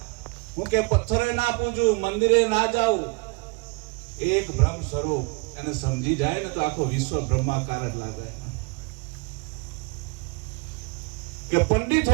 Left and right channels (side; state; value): left; quieter; 30.6 dB